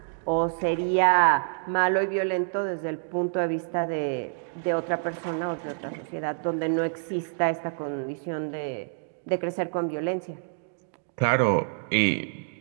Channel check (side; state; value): left; silent; digital silence